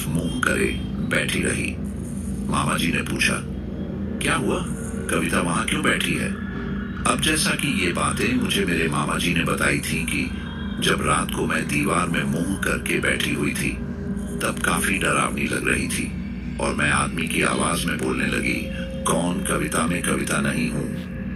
मुंह करे बैठी रही। मामा जी ने पूछा, क्या हुआ? कविता वहां क्यों बैठी है? अब जैसा कि ये बातें मुझे मेरे मामा जी ने बताई थी कि जब रात को मैं दीवार में मुंह करके बैठी हुई थी तब काफी डरावनी लग रही थी और मैं आदमी की आवाज में बोलने लगी, कौन? कविता में कविता नहीं हूँ।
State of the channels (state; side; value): identical; both; correlation 1.00